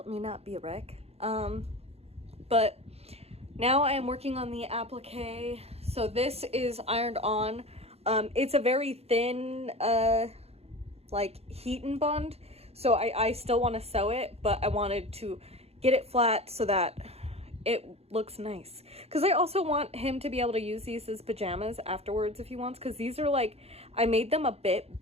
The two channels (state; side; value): late; left; 0.30 ms